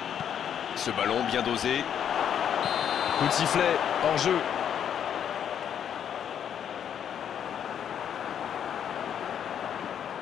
Ce ballon bien dosé. Coup de sifflet, hors jeu.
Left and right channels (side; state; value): right; quieter; 8.9 dB